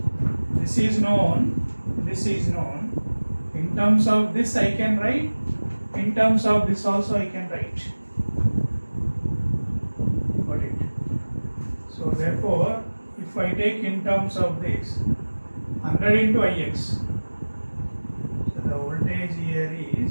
This is known, this is known. In terms of this I can write, in terms of this also I can write. Got it? So therefore, if I take in terms of this, 100 into Ix, so the voltage here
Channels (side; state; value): both; inverted; correlation -1.00